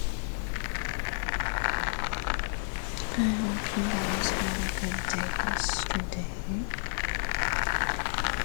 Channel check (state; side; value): silent; right; 57 dB below the other